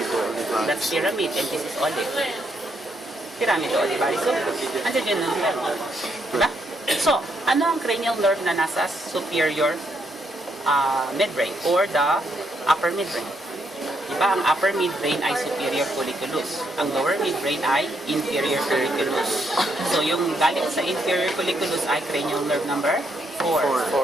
olivaris. That's pyramid and this is olive. Pyramido olivari sulcus. Andiyan yun ng 12. Diba? So, ano ang cranial nerve na nasa superior midbrain or the upper midbrain? Diba, ang upper midbrain ay superior colliculus. Ang lower midbrain ay inferior colliculus. So, yung galing sa inferior colliculus ay cranial nerve number 4.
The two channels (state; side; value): normal; both; correlation 0.76